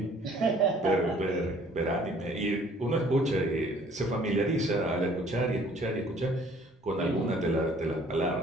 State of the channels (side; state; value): both; normal; correlation 0.56